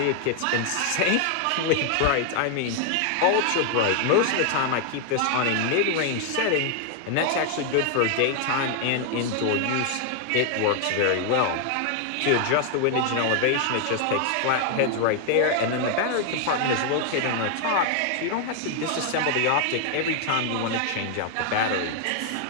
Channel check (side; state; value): both; different; correlation 0.00